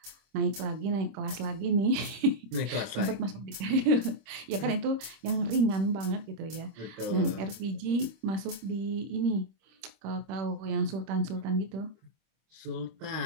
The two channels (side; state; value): left; late; 26 ms